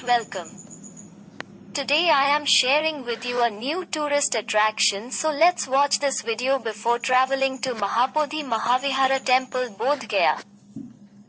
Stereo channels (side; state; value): both; identical; correlation 1.00